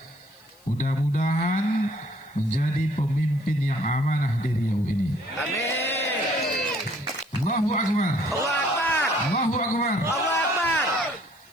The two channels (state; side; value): noise; left; hiss, 30 dB below the sound